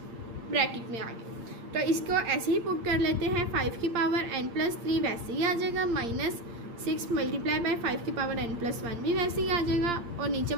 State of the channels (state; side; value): late; left; 8.6 ms